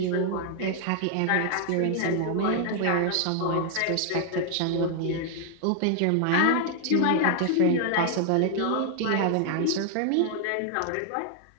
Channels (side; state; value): both; different; correlation 0.00